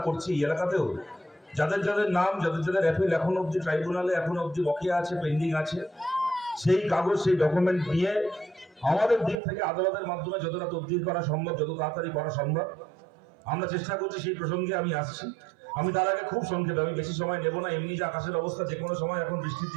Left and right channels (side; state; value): left; drops out; at 9.3 s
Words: করছি। এই এলাকাতেও যাদের যাদের নাম, যাদের যাদের অ্যাপিল এখন অব্দি ট্রাইব্যুনালে এখন অব্দি বকেয়া আছে, পেন্ডিং আছে, সেই কাগজ, সেই ডকুমেন্ট নিয়ে আমাদের দিক থেকে আদালতের মাধ্যমে যতটা তদবির করা সম্ভব, যত তাড়াতাড়ি করা সম্ভব আমরা চেষ্টা করছি। সেই প্রসঙ্গে আমি আসছি। আমি তার আগে খুব সংক্ষেপে, আমি বেশি সময় নেব না। এমনি যে আকাশের অবস্থা, যে কোনো সময় এখন বৃষ্টির